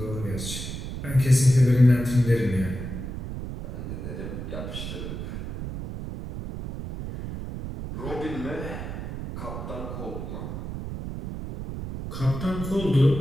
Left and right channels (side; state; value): right; noise; rumble, 7 dB below the sound